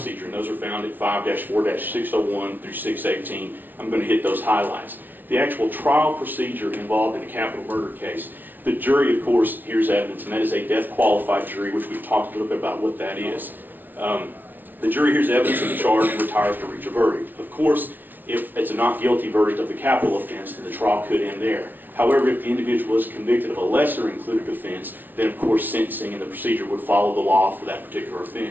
and those are found at 5-4-601 through 618. I'm going to hit those highlights. The actual trial procedure involved in a capital murder case, the jury, of course, hears evidence, and that is a death-qualified jury, which we've talked a little bit about what that is. The jury hears evidence of the charge and retires to reach a verdict. Of course, if it's a not guilty verdict of the capital offense, then the trial could end there. However, if the individual is convicted of a lesser included offense, then of course sentencing and the procedure would follow the law for that particular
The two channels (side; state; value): left; late; 0.087 ms